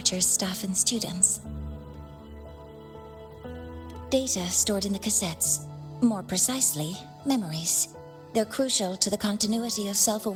staff, and students. Data stored in the cassettes. More precisely, memories. They're crucial to the continuity of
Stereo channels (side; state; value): both; identical; correlation 1.00